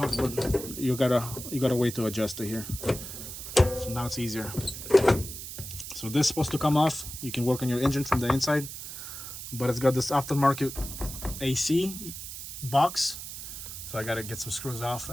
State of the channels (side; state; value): right; noise; hiss, 9 dB below the sound